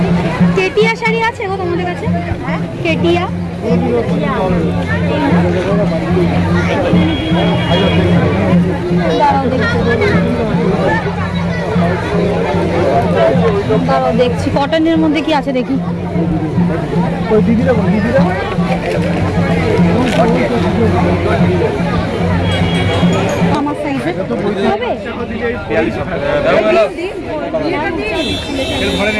কেটিয়া শাড়ি আছে গো তোমাদের কাছে? কেটিয়া দেখছি কটনের মধ্যে কি আছে দেখি। আমার সাইজে হবে?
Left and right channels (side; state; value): both; identical; correlation 1.00